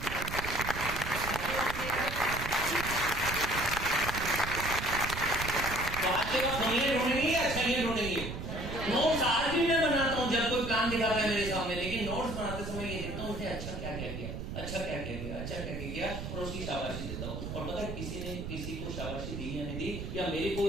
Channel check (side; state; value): right; noise; rumble, 6 dB below the sound